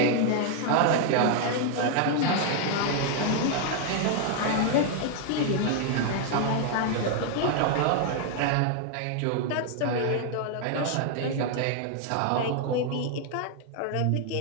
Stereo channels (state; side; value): different; both; correlation 0.00